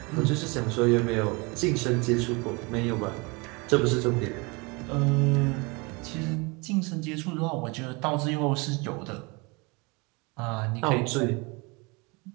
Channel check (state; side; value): quieter; left; 28.0 dB